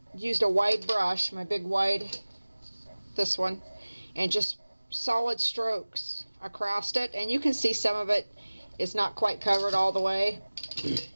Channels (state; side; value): inverted; both; correlation -1.00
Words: used a wide brush, my big wide, this one, and just solid strokes across it. And you can see some of it is not quite covered all the way.